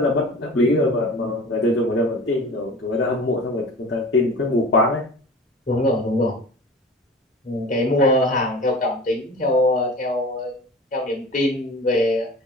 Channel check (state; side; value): normal; both; correlation 0.38